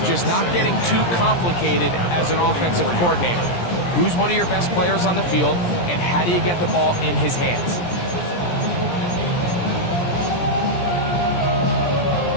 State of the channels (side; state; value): right; late; 17 ms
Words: just not getting too complicated as an offensive coordinator. Who's one of your best players on the field, and how do you get the ball in his hands?